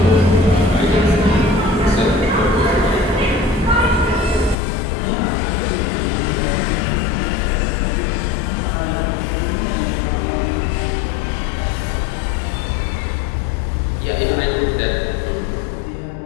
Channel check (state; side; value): drops out; right; at 4.5 s